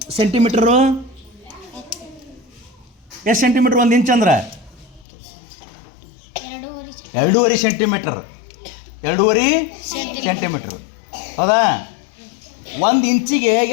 ಸೆಂಟಿಮೀಟ್ರು? ಎಷ್ಟು ಸೆಂಟಿಮೀಟ್ರ್ 1 ಇಂಚ್ ಅಂದ್ರೆ? 2.5 ಸೆಂಟಿಮೀಟ್ರ್. 2.5 ಸೆಂಟಿಮೀಟ್ರ್. ಹೌದಾ? 1 ಇಂಚಿಗೆ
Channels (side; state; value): right; drops out; at 5.1 s